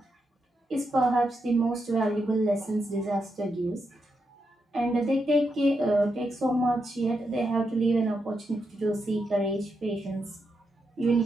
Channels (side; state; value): both; normal; correlation 0.84